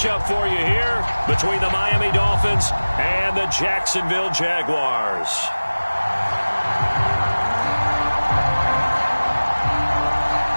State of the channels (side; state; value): both; inverted; correlation -1.00